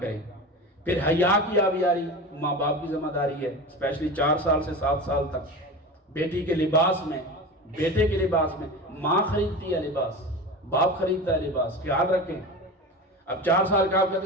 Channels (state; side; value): normal; both; correlation 0.29